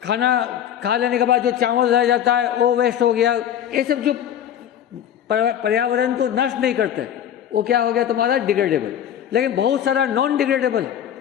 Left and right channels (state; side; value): quieter; right; 10.0 dB